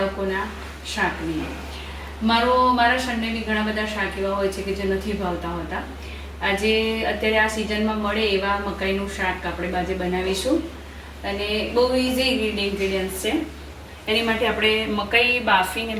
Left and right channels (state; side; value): identical; both; correlation 1.00